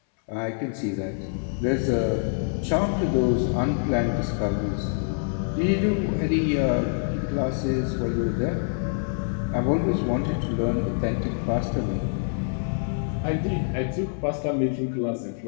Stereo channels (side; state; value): right; silent; 61 dB below the other